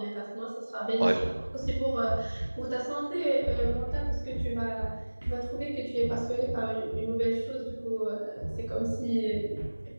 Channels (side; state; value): both; inverted; correlation -1.00